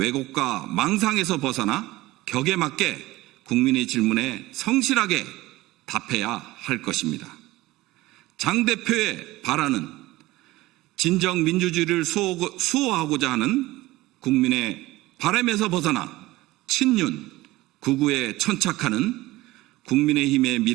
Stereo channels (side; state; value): left; quieter; 18.6 dB